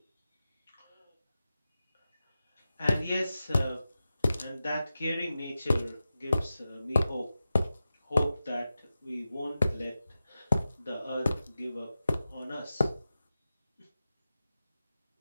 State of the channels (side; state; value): both; inverted; correlation -0.93